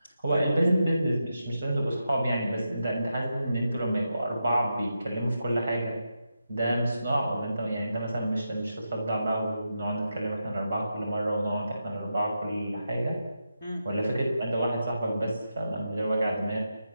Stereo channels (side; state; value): both; inverted; correlation -0.87